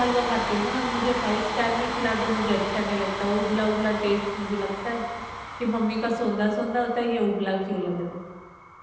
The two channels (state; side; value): identical; both; correlation 1.00